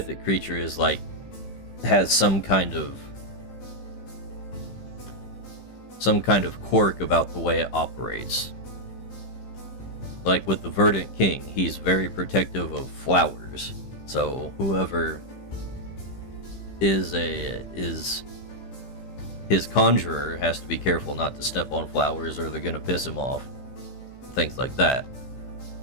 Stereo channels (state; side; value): late; right; 15 ms